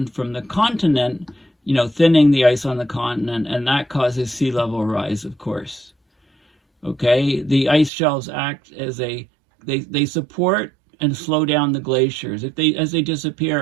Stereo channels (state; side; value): drops out; left; at 7.9 s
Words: from the continent, thinning the ice on the continent, and that causes sea level rise, of course. Okay, the ice shelves act as they support and slow down the glaciers. As they